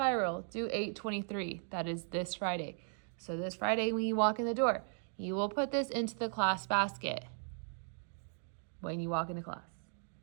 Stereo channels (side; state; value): left; silent; 53 dB below the other